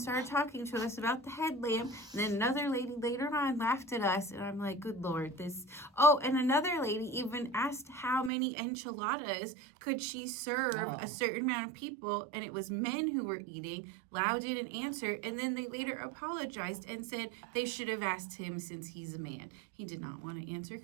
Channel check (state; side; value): drops out; left; at 8.3 s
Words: talking to us about the headlamp. And then another lady later on laughed at us. And I'm like, good Lord, this. Oh, and another lady even asked how many enchiladas could she serve a certain amount of people, and it was men who were eating. Lau didn't answer, and then they later apologized and said they should have asked him since he's a man. He did not want to answer